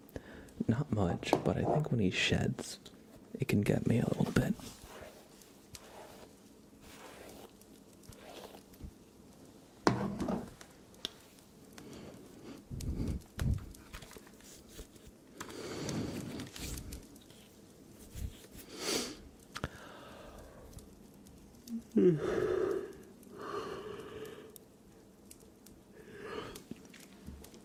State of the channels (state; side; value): identical; both; correlation 1.00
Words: Not much, but I think when he sheds, it can get me a little bit.